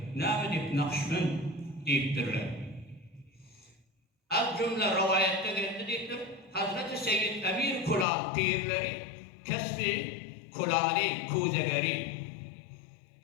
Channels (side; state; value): right; drops out; at 8.1 s